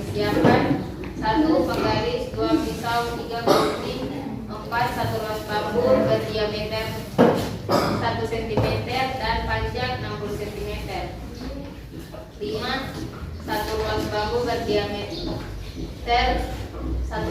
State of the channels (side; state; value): both; identical; correlation 1.00